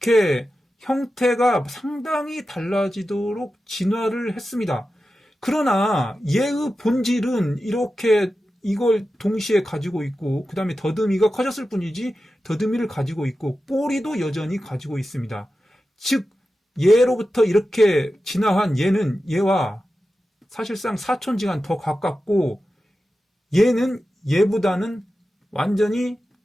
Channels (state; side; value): normal; both; correlation 0.92